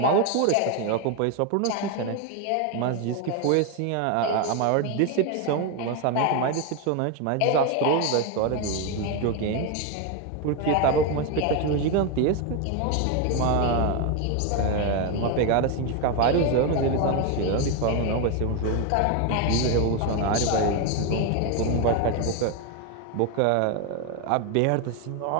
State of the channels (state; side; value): different; both; correlation 0.02